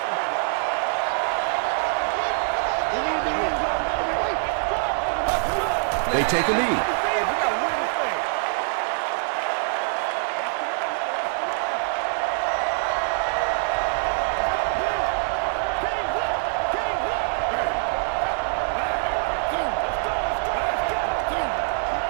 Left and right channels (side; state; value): left; silent; 62 dB below the other